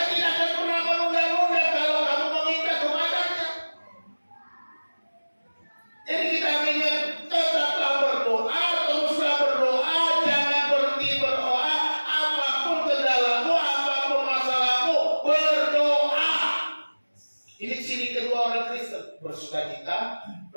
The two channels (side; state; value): both; inverted; correlation -1.00